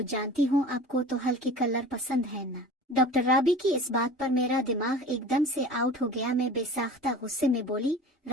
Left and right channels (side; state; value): both; normal; correlation 0.39